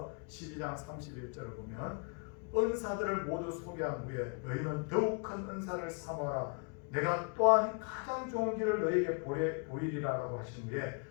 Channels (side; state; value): right; quieter; 37.7 dB